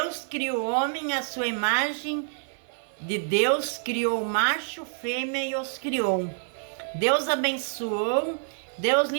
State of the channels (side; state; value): left; silent; 60 dB below the other